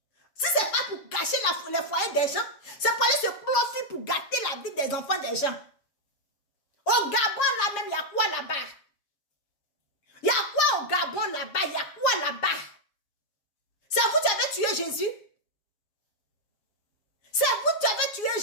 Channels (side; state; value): right; late; 7.3 ms